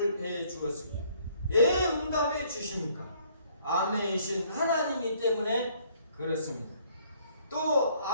해 주었습니다. 왜 응답해 주십니까? 아멘이신 하나님이기 때문에 그렇습니다. 또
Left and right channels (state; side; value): inverted; both; correlation -0.63